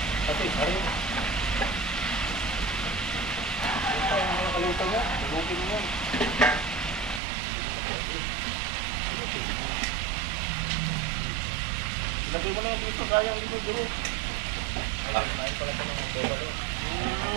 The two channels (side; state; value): left; drops out; at 7.2 s